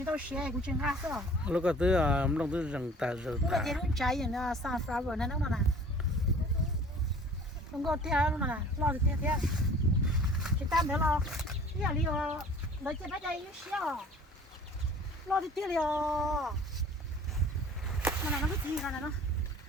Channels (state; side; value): normal; both; correlation 0.48